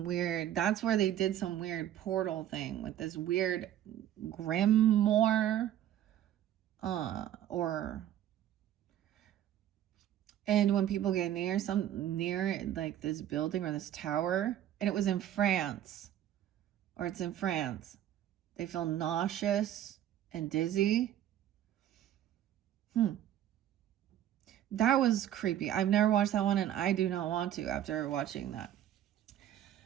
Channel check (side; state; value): left; quieter; 11.5 dB